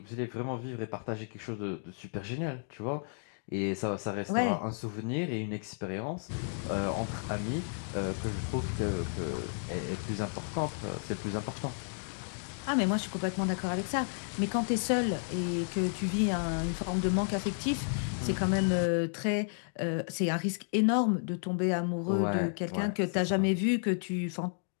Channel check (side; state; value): right; silent; digital silence